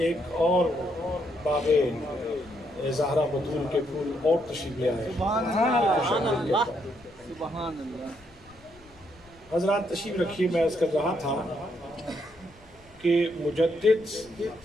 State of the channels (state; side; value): noise; left; rumble, 27 dB below the sound